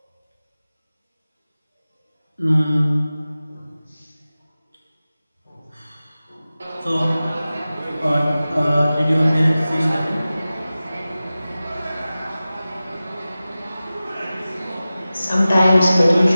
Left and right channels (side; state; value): both; inverted; correlation -0.96